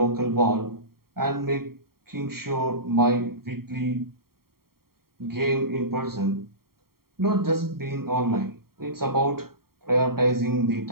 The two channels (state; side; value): late; left; 0.93 ms